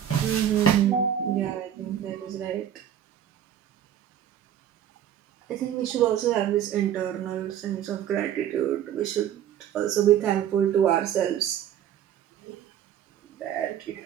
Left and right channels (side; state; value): left; quieter; 10.2 dB